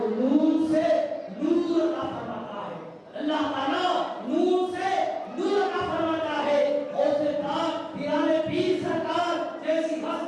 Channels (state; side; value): identical; both; correlation 1.00